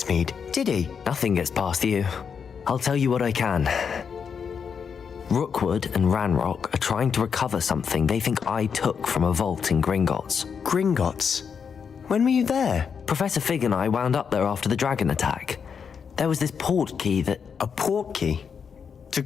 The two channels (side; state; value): right; quieter; 6.6 dB